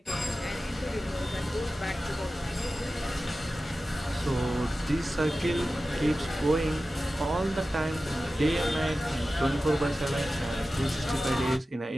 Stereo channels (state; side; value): normal; both; correlation 0.94